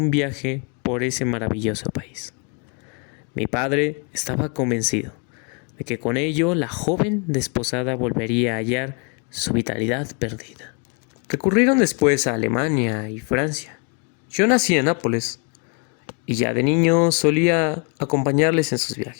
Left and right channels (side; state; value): right; quieter; 36.1 dB